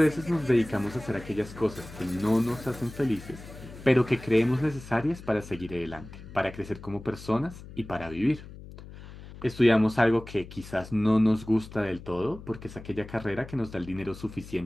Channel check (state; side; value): noise; left; hum, 15 dB below the sound